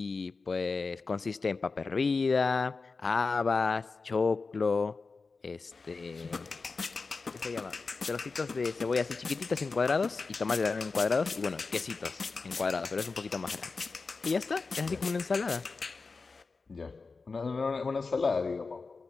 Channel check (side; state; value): right; quieter; 4.2 dB